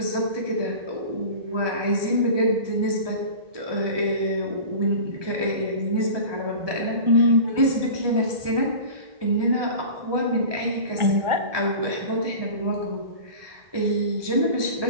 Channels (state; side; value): late; left; 1.2 ms